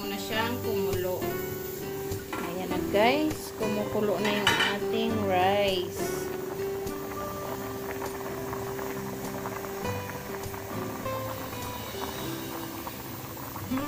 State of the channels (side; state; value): both; identical; correlation 1.00